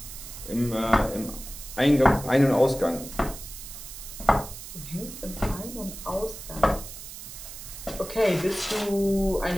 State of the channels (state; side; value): noise; right; hiss, 12 dB below the sound